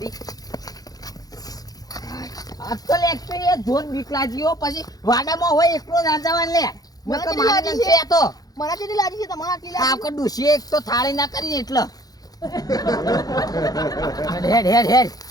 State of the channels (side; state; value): right; late; 0.18 ms